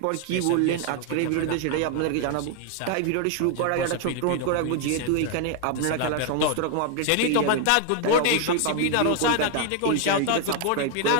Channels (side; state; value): both; different; correlation 0.00